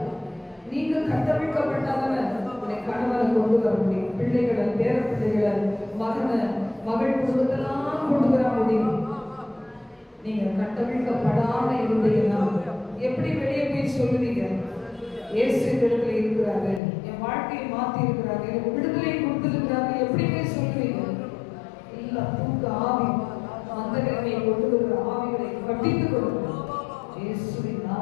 நீங்க கட்டமைக்கப்பட்டாதான உடைய கணவனை கொண்டு வர முடியும், பிள்ளைகளை, பேர பிள்ளைகளை, மகனை, மகள் குடும்பத்தெல்லாம் கொண்டு வர முடியும். நீங்க கட்டமைக்கப்படாம இருந்தீங்கன்னா எப்படி வெளியே போய் சொல்லுவீங்க? இயேசு இடத்துல இருக்கிறாரு, என் வாழ்க்கையை மாத்தி இருக்கிறாரு, எனக்கு விடுதலை கொடுத்திருக்கிறாரு, எப்படி போய் சொல்லுவீங்க? இல்ல, தூக்க ஆவி, அந்த நிலைமையை கொண்டு வருகிற ஆவிகளை கட்டித்துக் கொள்ளுங்கள். இயேசுவின்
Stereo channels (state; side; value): drops out; right; at 16.8 s